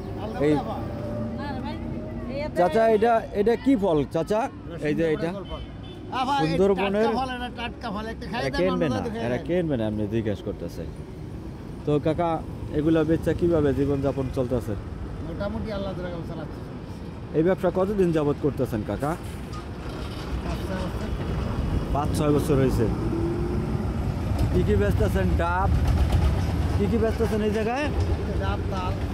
এই চাচা এটা কি ফল চাচা? এই যে এটা সুন্দরবনের কিনবেন আপনি জিজ্ঞেস করতেছে। তো কাকা এগুলা বেচা কিভাবে জীবনযাপন চলতেছে? মোটামুটি আল্লাহ চালাচ্ছে। এই ব্যবসা কতদিন যাবত করতেছেন কাকা? 5-6 বছর হয়েছে। কি কি বেচতেছেন? ডাব কি কি বেচতেছেন এই জায়গায়?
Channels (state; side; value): identical; both; correlation 1.00